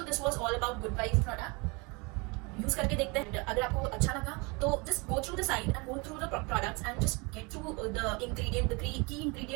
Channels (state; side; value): quieter; left; 28.8 dB